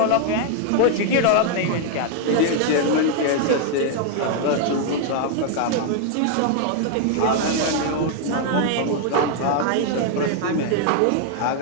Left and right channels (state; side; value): different; both; correlation 0.00